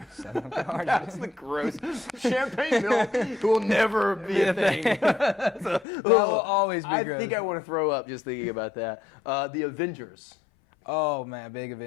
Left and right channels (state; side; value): drops out; right; at 5.9 s